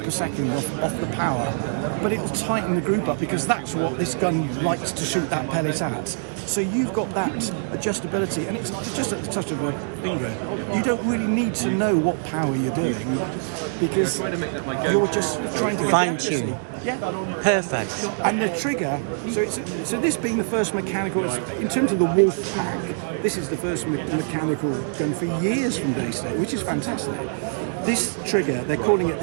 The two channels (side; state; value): left; silent; digital silence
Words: per second off the power, but it will tighten the group up because that's what this gun likes to shoot that pellet at. So you've got that adjustability, and it's just at the touch of a finger. You don't really need to know what power you're doing because you're just trying to get Fine the accuracy. tune. Yeah. Perfect. And the trigger, so this being the first mechanical, in terms of the Wolf Pack, this is the first mechanical gun for years from Daystate, which is fantastic. This trigger, they're calling it